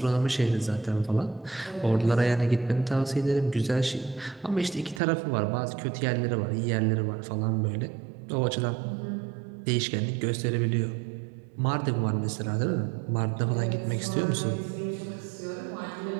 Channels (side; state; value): left; drops out; at 5.0 s